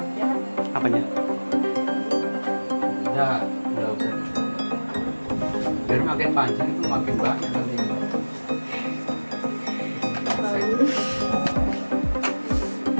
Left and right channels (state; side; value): inverted; both; correlation -1.00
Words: Apanya? Enggak usah. Biar makin panjang itu makin banyak nanti.